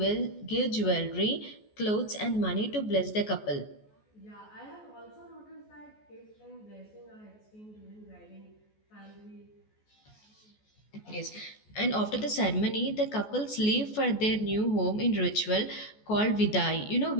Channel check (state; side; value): late; right; 14 ms